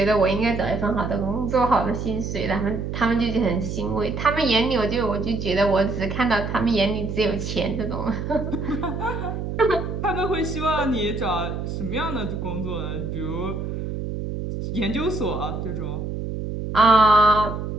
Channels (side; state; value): right; noise; hum, 5 dB below the sound